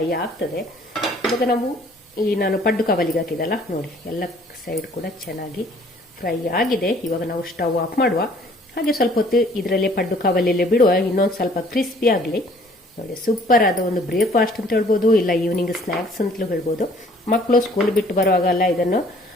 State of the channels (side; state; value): both; normal; correlation 0.57